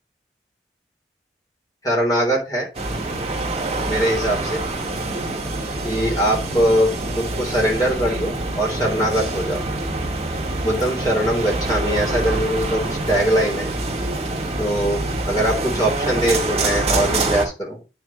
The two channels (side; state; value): both; normal; correlation 0.55